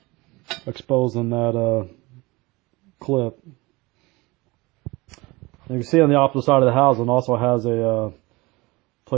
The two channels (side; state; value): left; quieter; 23.1 dB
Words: exposing that clip. And you can see on the opposite side of the housing also has a